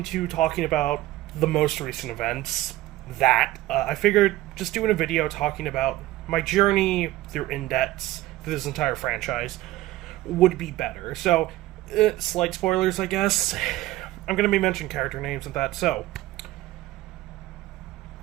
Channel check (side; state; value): left; quieter; 16.5 dB